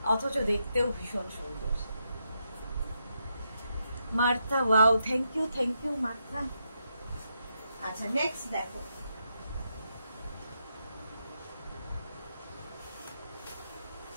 অথচ দেখতেও ভীষণ সুন্দর। Martha, wow, thank you Martha. আচ্ছা, নেক্সট দেখো,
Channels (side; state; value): both; inverted; correlation -0.82